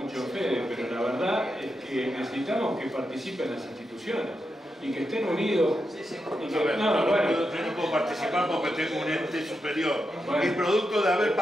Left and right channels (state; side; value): normal; both; correlation 0.86